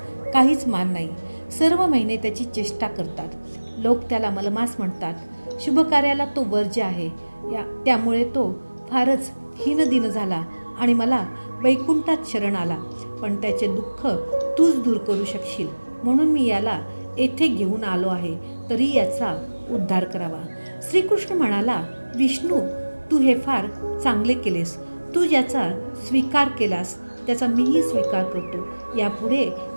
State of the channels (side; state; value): both; inverted; correlation -1.00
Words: काहीच मान नाही. सर्व महिने त्याची चेष्टा करतात. लोक त्याला मलमास म्हणतात. शुभ कार्याला तो वर्ज्य आहे. त्यामुळे तो फारच हीनदीन झाला आणि मला वैकुंठात शरण आला. पण त्याचे दुःख तूच दूर करू शकशील, म्हणून मी याला येथे घेऊन आलो आहे. तरी याचा उद्धार करावा. श्रीकृष्ण म्हणाला, विष्णू, तू हे फार चांगले केलेस. तू ज्याचा स्वीकार केलास त्याचा मीही स्वीकार करतो. यापुढे